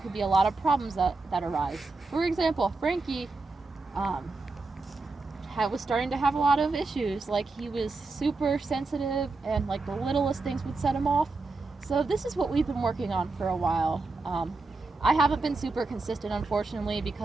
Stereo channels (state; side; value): quieter; left; 3.7 dB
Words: be a lot of problems that arise. For example, Frankie was starting to have a lot of issues. Like, he was super sensitive and like the littlest things would set him off. So this is what we've been working on for a while. I haven't been super consistent, unfortunately,